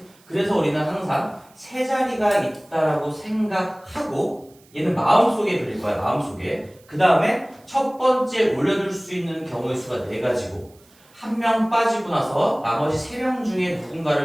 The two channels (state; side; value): noise; right; hiss, 29 dB below the sound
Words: 그래서 우리는 항상 3자리가 있다라고 생각하고 얘는 마음속에 그릴 거야. 마음속에. 그 다음에 첫 번째 올려둘 수 있는 경우의 수가 4가지고 한 명 빠지고 나서 나머지 3명 중에